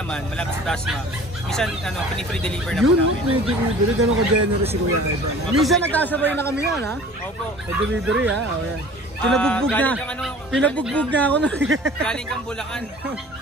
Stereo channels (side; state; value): both; normal; correlation 0.46